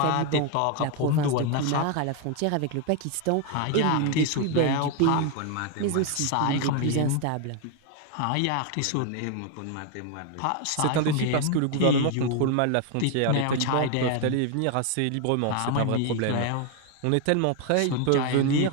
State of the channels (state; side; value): different; both; correlation 0.01